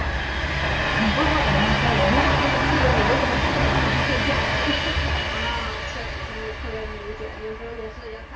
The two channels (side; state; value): both; identical; correlation 1.00